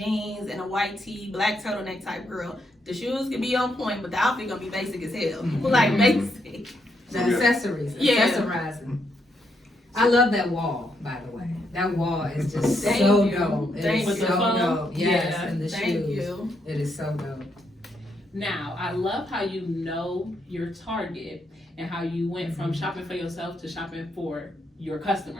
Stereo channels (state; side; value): normal; both; correlation 0.78